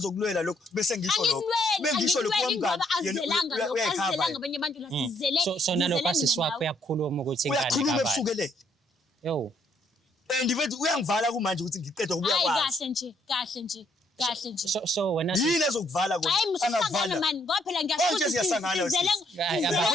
lokho bese ngisho lokho. Bengisho lokho ngoba azelanga abanye abantu la sizele. So nalokho asiswapho uyakhuluma ukuthi ingane kabani. Uyakhuluma ebusukelele. Yo. Ndibethi uyangivala kumanje ukuthi ngiqeda ukubuya kwazi. Kahle nje. So wena yini ezokuvala kodwa angavala mani ngoba phela ngiyasho siyasangana ngeke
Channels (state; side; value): normal; both; correlation 0.70